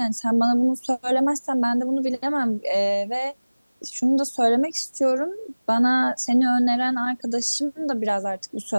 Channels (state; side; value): inverted; both; correlation -1.00